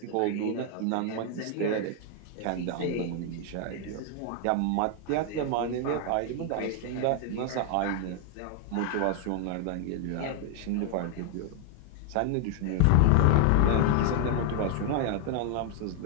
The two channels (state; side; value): different; both; correlation 0.00